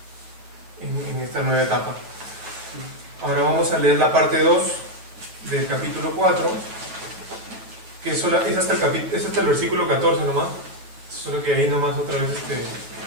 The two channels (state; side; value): late; left; 8.9 ms